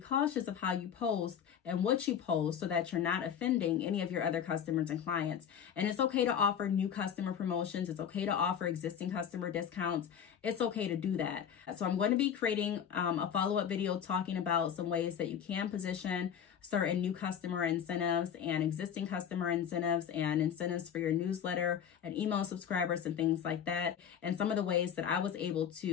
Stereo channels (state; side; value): quieter; right; 8.5 dB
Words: cautious of how you post and what you post so that you're not offending any of your other customers and clients. And it's okay to offer new customer promotions. It's okay to offer existing customer discounts. It's it's okay to do that. So I'm going to be creating a follow-up video talking about some ways that you can position certain new customer incentives and existing customer incentives and incentives for your newsletter and email subscribers and things like that. And some of the ways that I was able